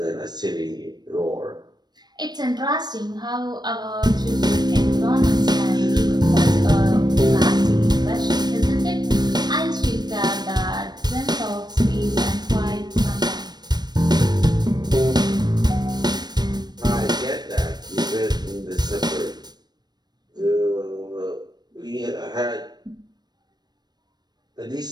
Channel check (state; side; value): late; left; 0.20 ms